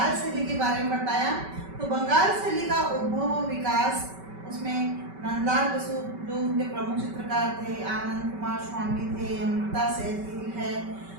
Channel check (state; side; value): late; left; 5.2 ms